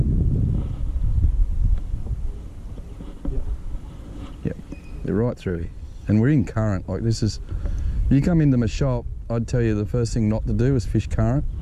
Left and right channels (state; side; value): identical; both; correlation 1.00